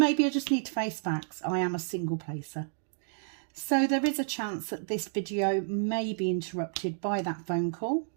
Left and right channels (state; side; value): silent; left; digital silence